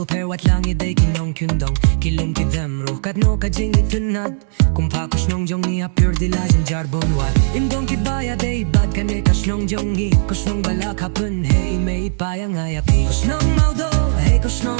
per wat lang iday kinong kyundong Kilum ki them ruh katno ka jing itunad Kumpa koşnong jong ni apur dilajin jarbon wat Imdong ki baya day bad ka ne koşnong jong ni Koşnong balak hapun hey may payang ayapi Koşnong maudo hey koşnong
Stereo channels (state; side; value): silent; left; digital silence